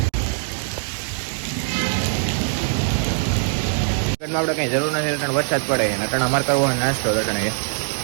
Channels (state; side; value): silent; left; digital silence